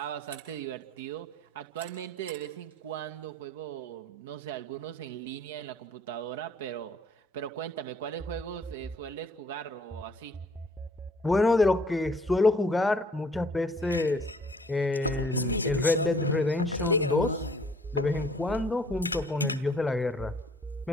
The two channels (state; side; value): normal; both; correlation 0.58